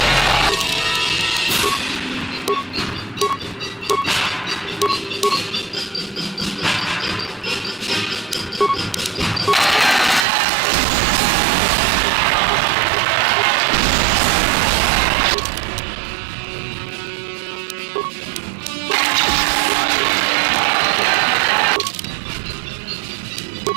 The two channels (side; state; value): left; drops out; at 10.2 s